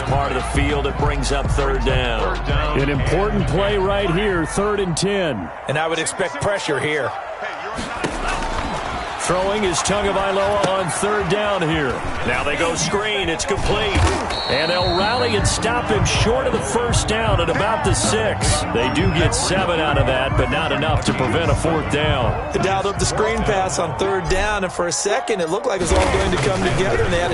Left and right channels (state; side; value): identical; both; correlation 1.00